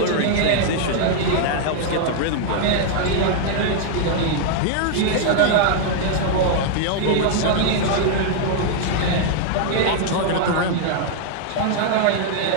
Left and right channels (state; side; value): different; both; correlation -0.01